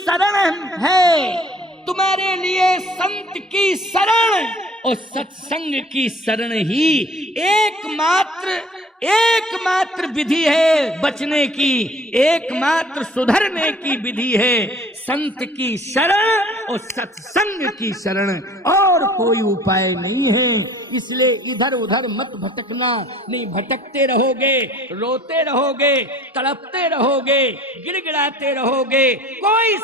है, तुम्हारे लिए संत की शरण और सत्संग की शरण ही एकमात्र विधि है बचने की, एकमात्र सुधरने की विधि है। संत की शरण और सत्संग की शरण, और कोई उपाय नहीं है। इसलिए इधर उधर मत भटकना। नहीं भटकते रहोगे, रोते रहोगे, तड़पते रहोगे, गिड़गिड़ाते रहोगे, कोई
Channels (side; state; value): both; normal; correlation 0.51